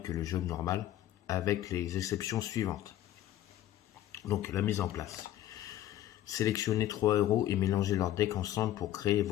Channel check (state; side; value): quieter; right; 12.9 dB